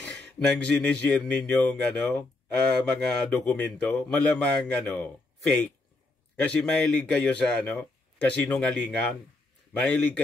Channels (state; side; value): quieter; right; 3.1 dB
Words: nang sinishare ninyong mga dokumento. Malamang fake. Kasi mahilig kayo sa kasinungalingan. Mahilig